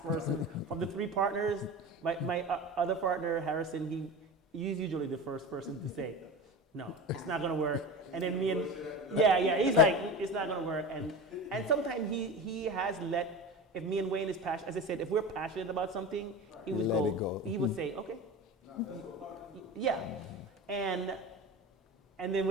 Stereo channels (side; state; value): both; normal; correlation 0.29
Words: person from the three partners. My other partner, Harrison, he's usually the first person to say, no, it's not gonna work. And then me and, he's like, it's not gonna work. And sometimes he has if me and Wayne is passionate, as I said, if we're passionate about something, he would go. He would say, okay, yeah, and then